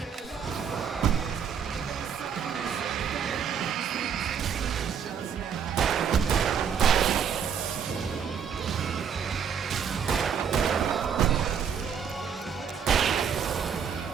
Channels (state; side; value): quieter; left; 7.4 dB